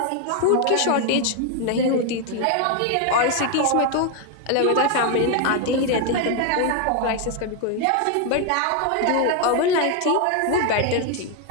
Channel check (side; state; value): both; different; correlation 0.01